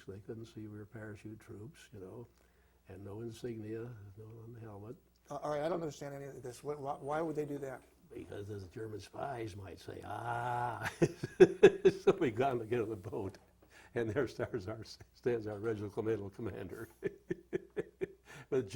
So they couldn't see we were parachute troops, and no insignia, no on the helmet. All right, I don't understand any of this. Why would they do that? Because the German spies might say, So we got to get on the boat, and there stands our regimental commander with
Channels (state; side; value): identical; both; correlation 1.00